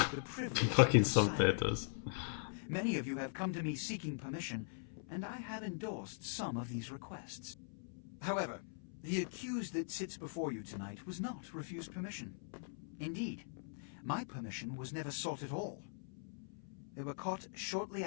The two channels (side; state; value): right; silent; 50 dB below the other